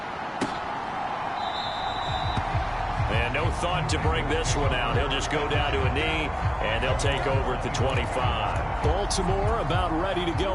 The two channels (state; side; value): identical; both; correlation 1.00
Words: And no thought to bring this one out. He'll just go down to a knee, and they'll take over at the 25. Baltimore about ready to go